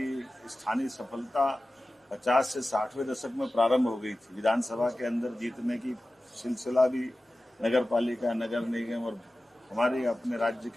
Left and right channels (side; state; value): both; normal; correlation 0.95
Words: स्थानीय सफलता 50 से 60वें दशक में प्रारंभ हो गई थी, विधानसभा के अंदर जीतने की सिलसिला भी नगर पालिका, नगर निगम और हमारे अपने राज्य